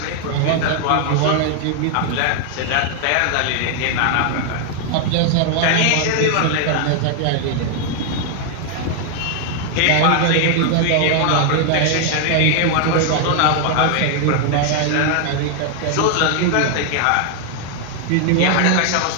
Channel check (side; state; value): both; different; correlation 0.00